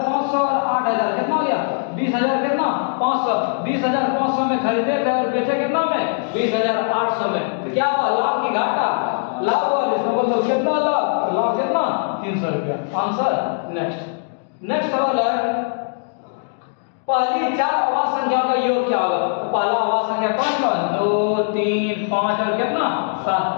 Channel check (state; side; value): silent; right; digital silence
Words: और 8,000 कितना हो गया 20,000 कितना 500 20,500 में खरीदे थे और बेचे कितना में 20,800 में। तो क्या हुआ लाभ की घाटा, लाभ हुआ, इसका मतलब कितना लाभ, लाभ कितना 300 रुपया। आंसर। नेक्स्ट सवाल है पहली 4 आवाज संख्याओं का योग क्या होगा। तो पहला आवाज संख्या कौन कौन 2 3 5 और कितना 7,